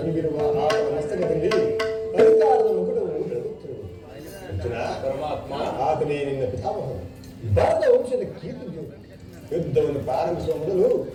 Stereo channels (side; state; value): both; identical; correlation 1.00